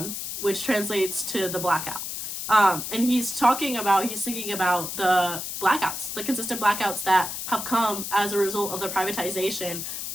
which translates to the blackout. And he's singing about the blackouts, the consistent blackouts that have come as a result of the privatization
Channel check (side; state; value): left; noise; hiss, 6 dB below the sound